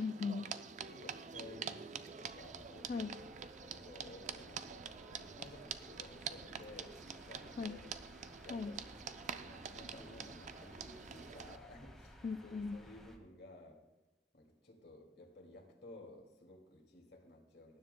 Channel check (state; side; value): normal; both; correlation 0.44